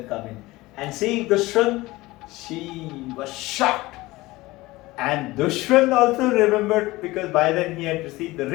come in. And seeing Dushwan, she was shocked. And Dushwan also remembered, because by then he had received the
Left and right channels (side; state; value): right; quieter; 19.8 dB